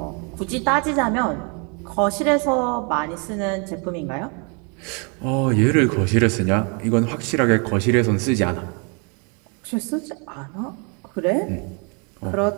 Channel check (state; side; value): quieter; left; 34.9 dB